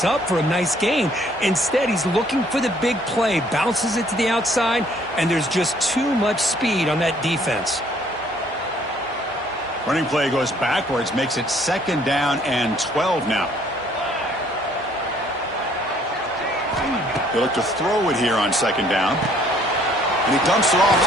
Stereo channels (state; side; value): normal; both; correlation 0.61